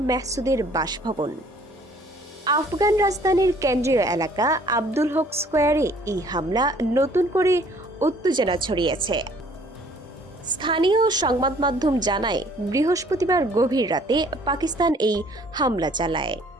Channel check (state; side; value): normal; both; correlation 0.57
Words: মেহসুদের বাসভবন। আফগান রাজধানীর কেন্দ্রীয় এলাকা আব্দুল হক স্কোয়ারে এই হামলা নতুন করে উত্তেজনা ছড়িয়েছে। স্থানীয় সংবাদ মাধ্যম জানায়, বৃহস্পতিবার গভীর রাতে পাকিস্তান এই হামলা চালায়।